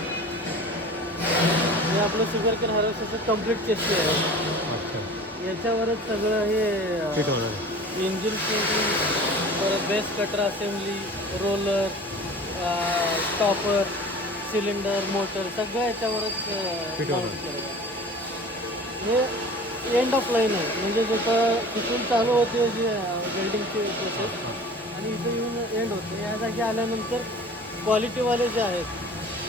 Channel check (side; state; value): both; normal; correlation 0.41